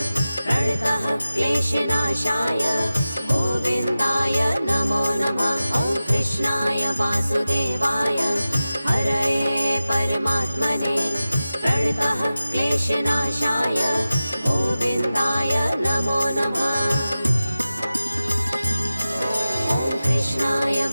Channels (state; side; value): inverted; both; correlation -0.95